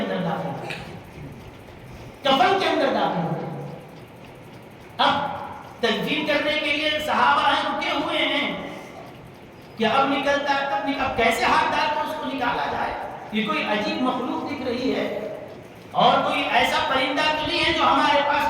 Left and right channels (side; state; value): both; identical; correlation 1.00